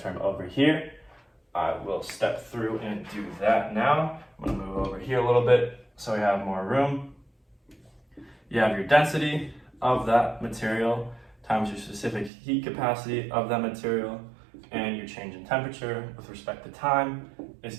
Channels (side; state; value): left; drops out; at 12.3 s